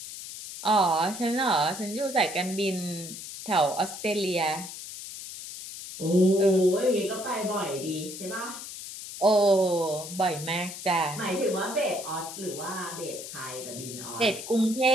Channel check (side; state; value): left; noise; hiss, 10 dB below the sound